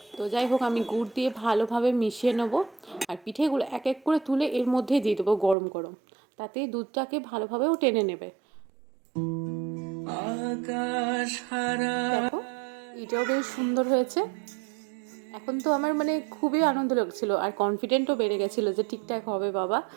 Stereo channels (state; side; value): drops out; left; at 5.6 s